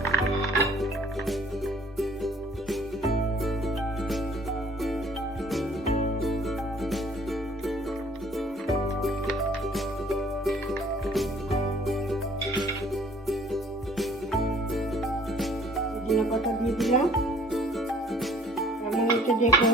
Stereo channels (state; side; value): normal; both; correlation 0.56